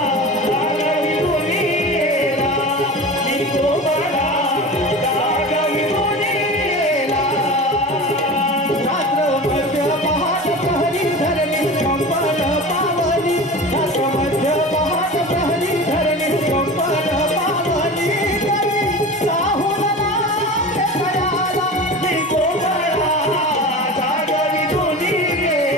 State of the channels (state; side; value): normal; both; correlation 0.33